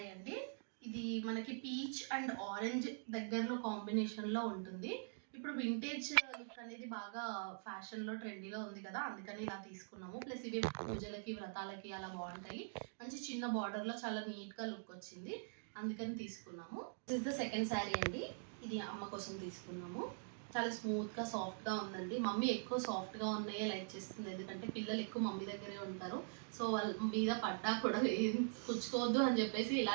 అండి. ఇది మనకి పీచ్ అండ్ ఆరెంజ్ దగ్గరలో కాంబినేషన్లో ఉంటుంది. ఇప్పుడు వింటేజ్ లుక్ అనేది బాగా ఫ్యాషన్లో ట్రెండీలో ఉంది కదా, అందుకని ఇలా తీసుకున్నాము. ప్లస్ ఇవి పూజలకి వ్రతాలకి అలా బాగుంటాయి. మంచి చిన్న బార్డర్లో చాలా నీట్గా లుక్ వచ్చింది, అందుకని తీసుకున్నాము. This is the second sari అండి. ఇది అమ్మ కోసం తీసుకున్నాము. చాలా స్మూత్గా సాఫ్ట్గా ఉందండి. మమ్మీ ఎక్కువ సాఫ్ట్గా ఉన్నాయే లైక్ చేస్తుంది, ఎందుకంటే పిల్లలు ఎక్కువ మమ్మీ దగ్గరే ఉంటారు. సో వాళ్ళ మీద పడ్డా కూడా ఏం పుచ్చుకోవద్దు అని చెప్పేసి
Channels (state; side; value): silent; left; digital silence